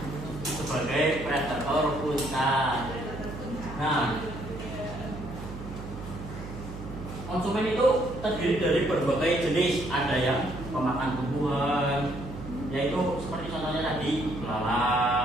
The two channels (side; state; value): right; noise; hum, 11 dB below the sound